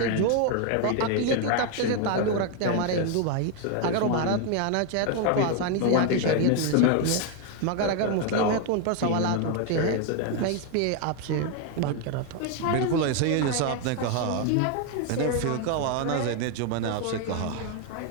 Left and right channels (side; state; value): both; different; correlation 0.01